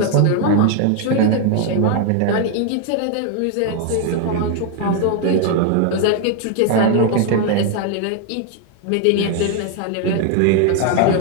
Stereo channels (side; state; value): both; different; correlation 0.01